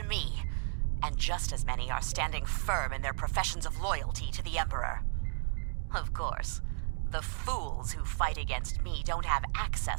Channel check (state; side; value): silent; left; digital silence